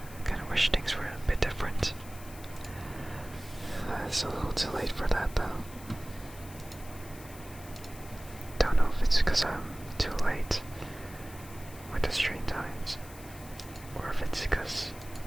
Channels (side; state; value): left; noise; hiss, 18 dB below the sound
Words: things were a bit different. It's a little too late for that, though. Don't know if it's because I'm too late with the stream times, or if it's because